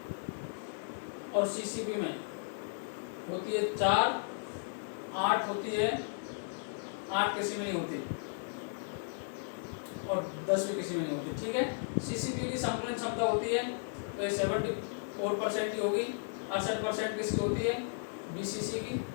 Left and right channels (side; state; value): right; silent; 54 dB below the other